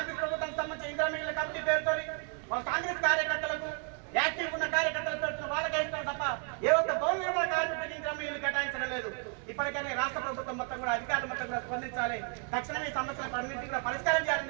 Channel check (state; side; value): quieter; left; 38.9 dB